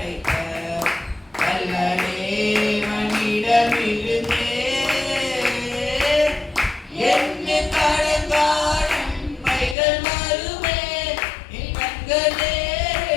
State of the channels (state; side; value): drops out; right; at 9.8 s